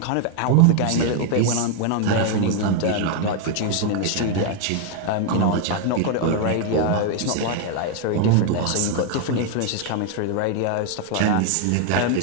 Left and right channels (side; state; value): both; different; correlation 0.00